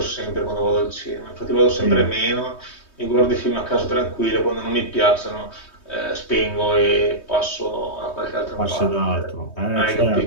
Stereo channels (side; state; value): right; late; 3.2 ms